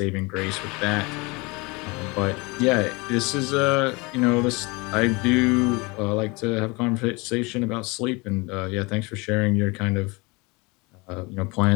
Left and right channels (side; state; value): right; quieter; 26.6 dB